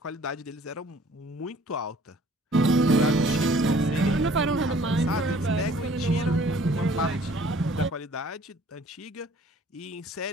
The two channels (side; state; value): both; normal; correlation 0.55